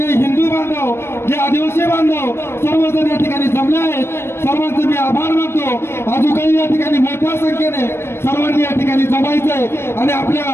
हिंदू बांधव, जे आदिवासी बांधव सर्वजण या ठिकाणी जमले आहेत, सर्वांचे मी आभार मानतो। अजून काही या ठिकाणी मोठ्या संख्येने सर्वांनी या ठिकाणी जमायचंय आणि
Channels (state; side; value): late; right; 0.12 ms